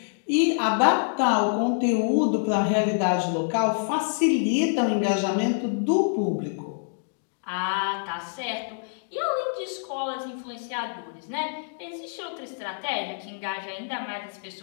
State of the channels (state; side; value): silent; right; digital silence